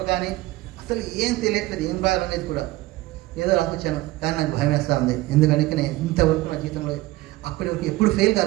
కానీ అసలు ఏం తెలియట్లేదు, ఏం రాయాలనేది కూడా. ఏదో రాసొచ్చాను కానీ నాకు భయం వేస్తూ ఉంది, ఎందుకంటే నేను ఇంతవరకు నా జీవితంలో అప్పటి వరకు ఎప్పుడు ఫెయిల్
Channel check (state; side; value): quieter; left; 18.4 dB